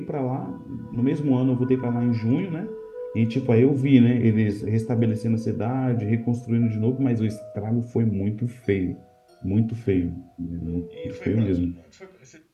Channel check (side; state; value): both; identical; correlation 1.00